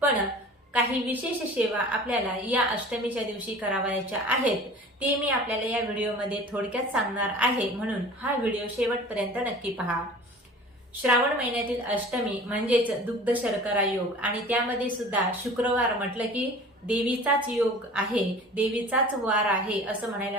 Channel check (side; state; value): both; normal; correlation 0.42